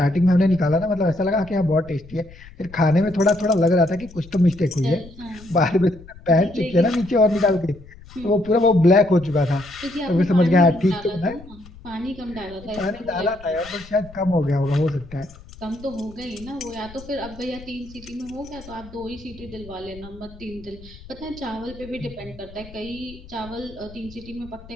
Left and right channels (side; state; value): left; noise; rumble, 19 dB below the sound